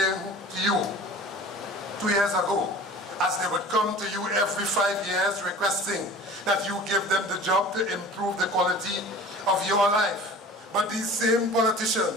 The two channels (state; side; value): normal; both; correlation 0.42